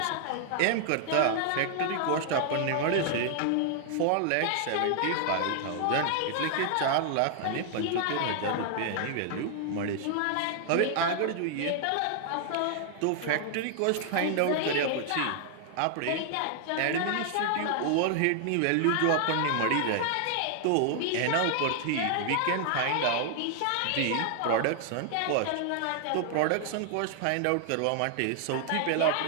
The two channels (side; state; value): both; different; correlation 0.00